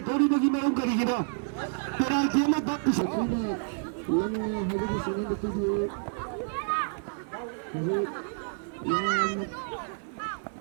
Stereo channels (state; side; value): silent; left; digital silence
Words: Tori the Gimau Karigina. But I came up back to say,